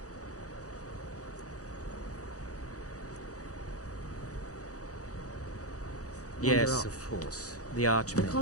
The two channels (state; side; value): late; right; 0.66 ms